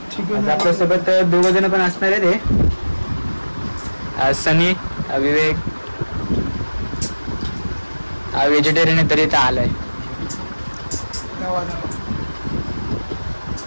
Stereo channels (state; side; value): inverted; both; correlation -1.00